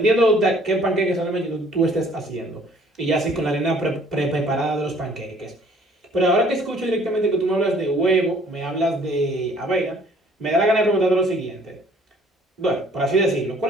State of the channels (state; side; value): normal; both; correlation 0.57